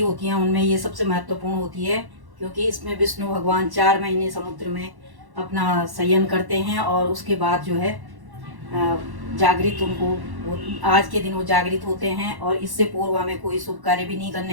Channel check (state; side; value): late; left; 1.1 ms